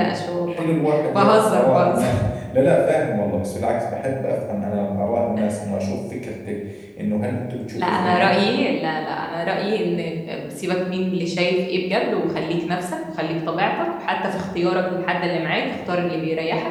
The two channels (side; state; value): both; identical; correlation 1.00